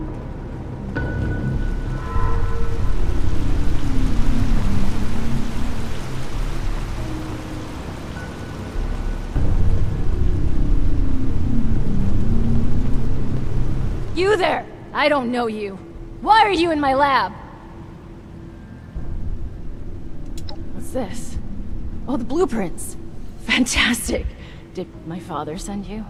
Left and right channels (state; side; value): identical; both; correlation 1.00